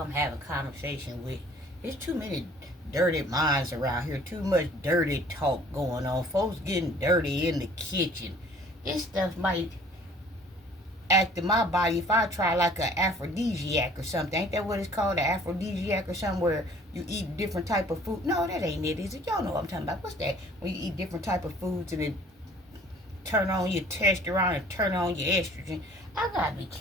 having conversation with. There's too many dirty minds around here. Too much dirty talk going on. Folks getting dirty in the kitchen. This stuff might act in my body if I try like an aphrodisiac or something. Ain't that what it's called? An aphrodisiac or something where you eat different type of food? No, that ain't it, is it? Y'all know what I'm talking about. What's that? When you eat different type of foods and it turn on your testosterone and turn on your estrogen. I gotta be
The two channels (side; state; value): both; normal; correlation 0.54